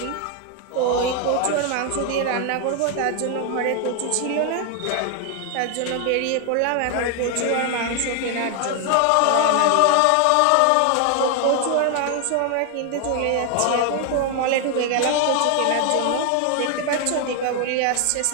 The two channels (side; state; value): both; different; correlation 0.00